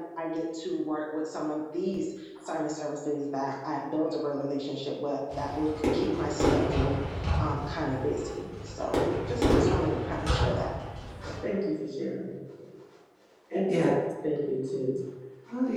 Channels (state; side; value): identical; both; correlation 1.00